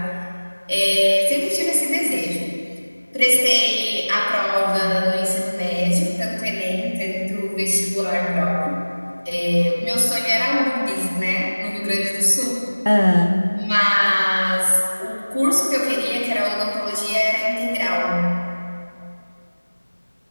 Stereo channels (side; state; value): both; inverted; correlation -1.00